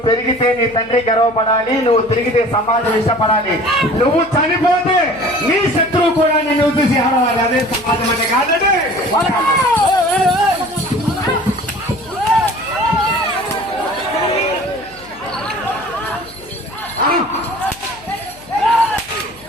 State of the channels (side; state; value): left; noise; hum, 23 dB below the sound